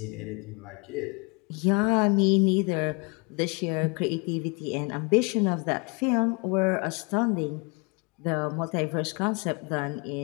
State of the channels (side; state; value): right; quieter; 32.0 dB